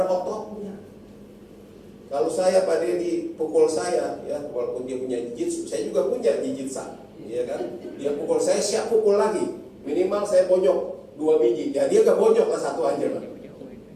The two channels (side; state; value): both; identical; correlation 1.00